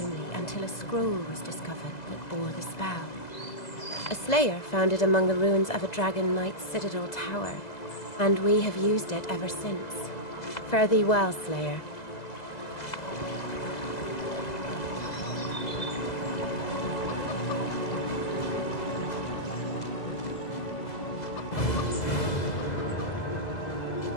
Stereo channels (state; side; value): late; right; 2.0 ms